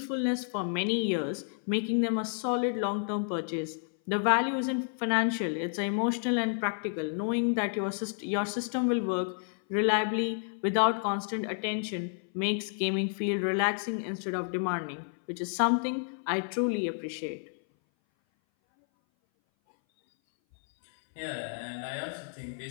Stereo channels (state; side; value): silent; right; 58 dB below the other